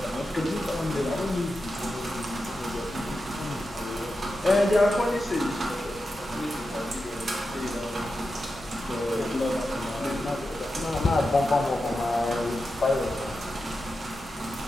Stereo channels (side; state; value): both; normal; correlation 0.90